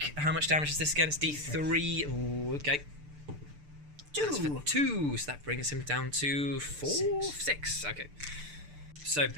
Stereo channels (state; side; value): late; left; 6.8 ms